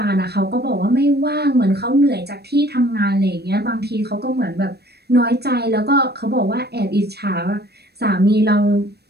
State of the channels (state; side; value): late; left; 0.47 ms